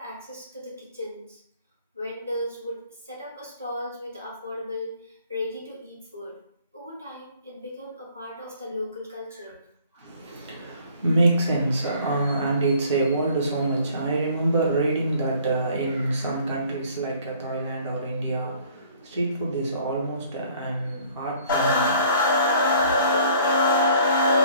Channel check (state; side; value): inverted; both; correlation -0.56